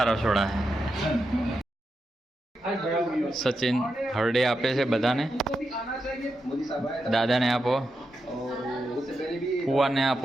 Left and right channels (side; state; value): both; normal; correlation 0.87